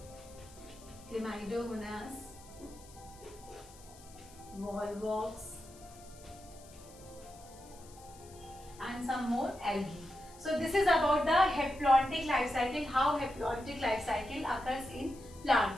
volvox, and some more algae. So this is about the haplontic life cycle, how haplontic life cycle occurs in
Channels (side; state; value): left; noise; hiss, 22 dB below the sound